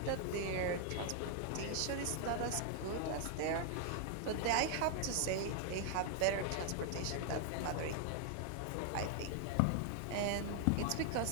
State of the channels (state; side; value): different; both; correlation 0.00